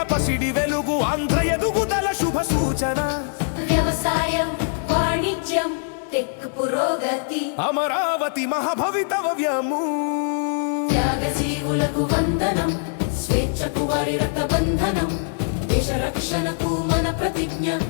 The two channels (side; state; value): right; silent; digital silence